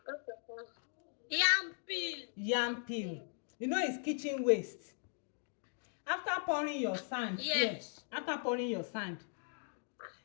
Yam peel. Yam peel. You know it's kitchen waste. After pouring your sand, Yes. after pouring your sand,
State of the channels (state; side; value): silent; right; 52 dB below the other